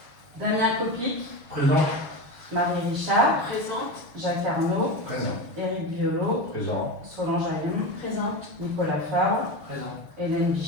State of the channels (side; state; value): left; late; 6.7 ms